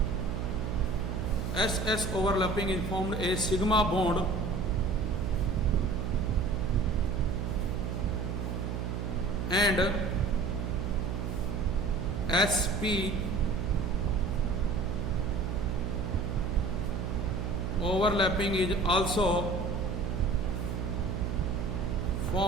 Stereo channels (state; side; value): noise; right; hum, 3 dB below the sound